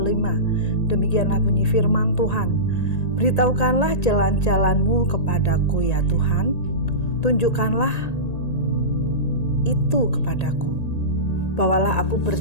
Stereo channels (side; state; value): right; late; 1.8 ms